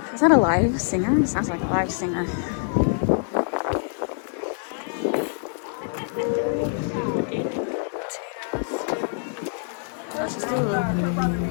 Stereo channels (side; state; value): right; silent; digital silence